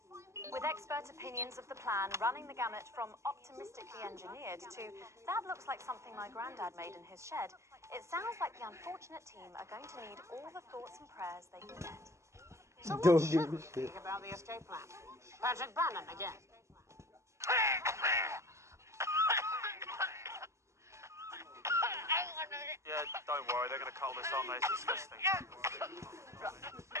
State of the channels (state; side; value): late; left; 0.14 ms